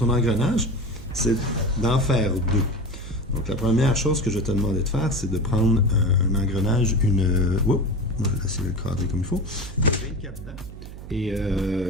engrenage, c'est d'en faire deux. Donc la première chose que je vais te demander de faire, c'est de prendre un engrenage, Oups, je vais essayer de le cadrer comme il faut. 24 dents. Et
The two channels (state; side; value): noise; right; hum, 13 dB below the sound